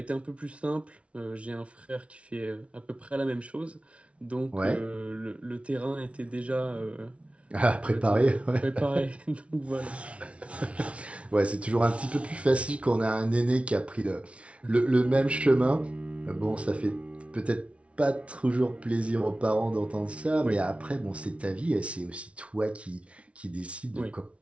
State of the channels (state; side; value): late; left; 0.062 ms